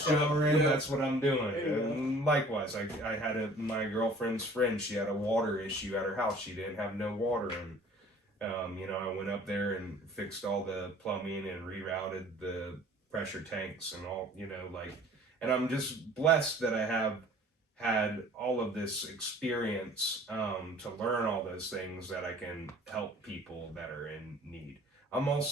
in, that's what I'm doing. There you go. And likewise, I had my girlfriend's friend, she had a water issue at her house. She didn't have no water, and you know, I went up there and fixed all the plumbing and rerouted the pressure tanks and all, you know, like, and I'm just blessed that I have had all of this experience to learn all those things that I can help people that are in need. I'm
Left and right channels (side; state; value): both; normal; correlation 0.50